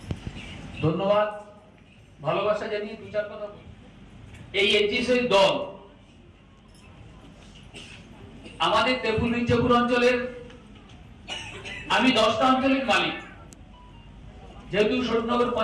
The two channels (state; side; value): identical; both; correlation 1.00